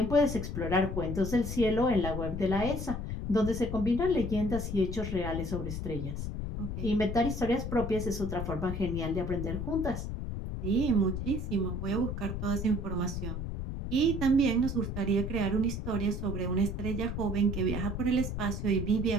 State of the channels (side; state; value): left; noise; rumble, 4 dB below the sound